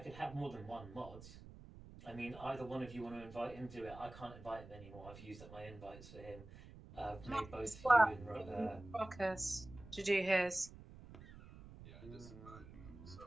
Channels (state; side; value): noise; right; rumble, 16 dB below the sound